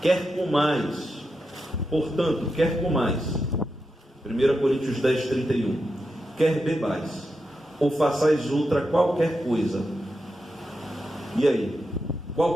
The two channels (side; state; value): both; normal; correlation 0.87